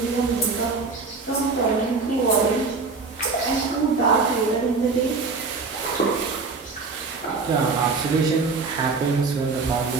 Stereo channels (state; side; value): quieter; left; 4.3 dB